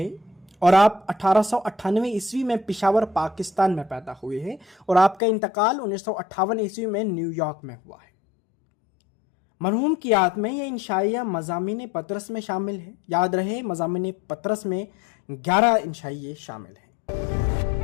और आप 1898 ईस्वी में पिशावर पाकिस्तान में पैदा हुए हैं और आपका इंतकाल 1958 ईस्वी में न्यूयॉर्क में हुआ है। मरहूम की याद में यह इंशाइया मज़ामीन पतरस में शामिल है। याद रहे, मज़ामीन पतरस में 11 इंशाइये शामिल हैं।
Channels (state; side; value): drops out; right; at 5.2 s